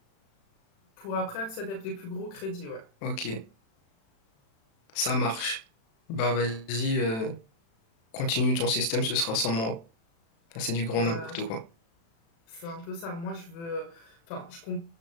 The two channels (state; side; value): late; right; 36 ms